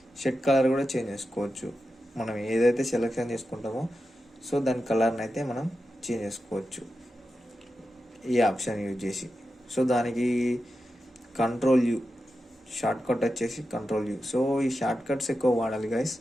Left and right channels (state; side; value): normal; both; correlation 0.90